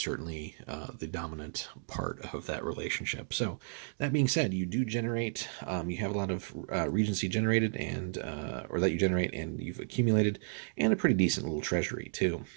the dominant part of that relationship. So that being said, you do generate, you have a lot of regency generated, and or that you generate and you've accumulated, and a pretty decent little treasury too.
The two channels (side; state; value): left; silent; digital silence